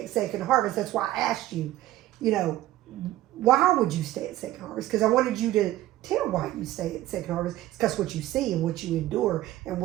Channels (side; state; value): left; quieter; 15.1 dB